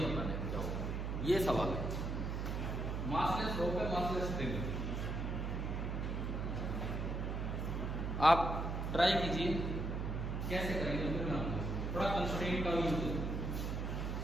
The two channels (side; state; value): right; noise; hum, 2 dB below the sound